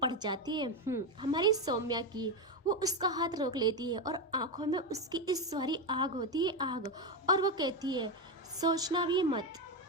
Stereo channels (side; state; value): both; normal; correlation 0.10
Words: पड़ जाती है हमारी सौम्या की। वो उसका हाथ रोक लेती है और आंखों में उसकी इस सारी आग होती है, आग। और वो कहती है, सोचना भी मत,